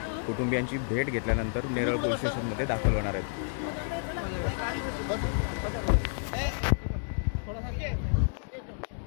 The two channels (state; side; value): silent; right; digital silence